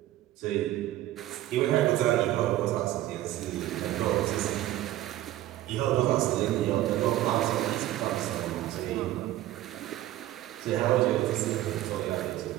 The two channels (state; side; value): quieter; left; 14.6 dB